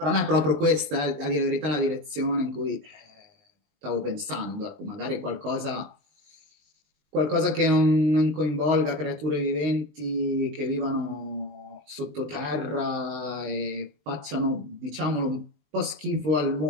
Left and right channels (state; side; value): late; left; 20 ms